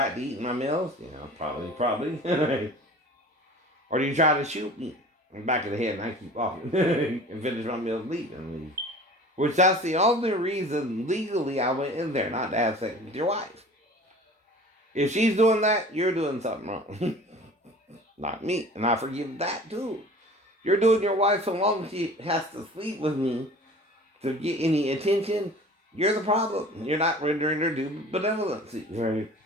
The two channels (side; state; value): both; normal; correlation 0.43